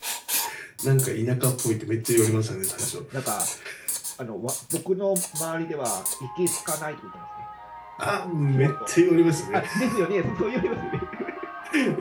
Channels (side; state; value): both; identical; correlation 1.00